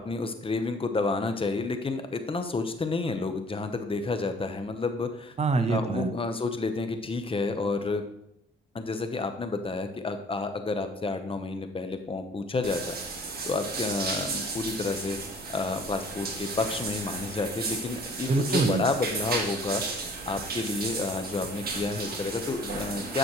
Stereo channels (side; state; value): both; normal; correlation 0.54